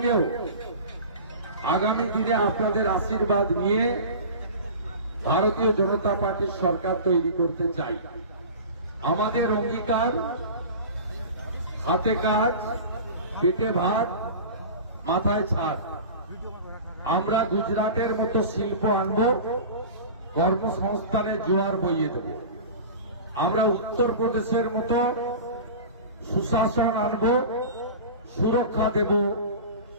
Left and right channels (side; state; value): both; inverted; correlation -0.34